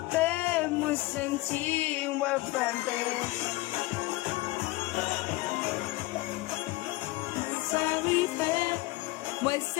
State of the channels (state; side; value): quieter; right; 20.1 dB